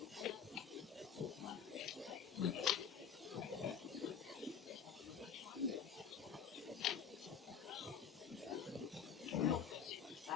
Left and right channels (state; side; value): quieter; right; 7.2 dB